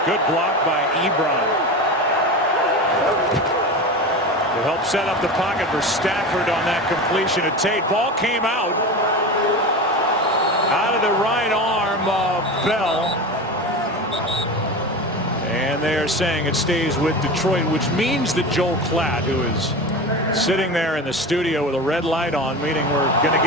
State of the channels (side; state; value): both; normal; correlation 0.27